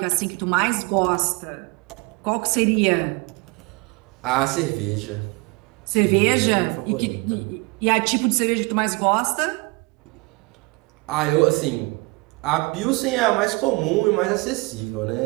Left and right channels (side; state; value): left; quieter; 27.0 dB